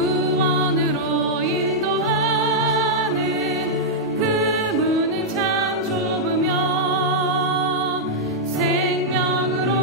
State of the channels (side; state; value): both; normal; correlation -0.06